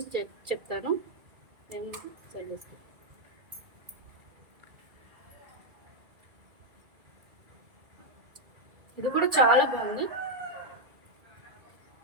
చెప్తాను. నేను సైడ్ చేస్తాను. ఇది కూడా చాలా బాగుంది.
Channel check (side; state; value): left; late; 2.4 ms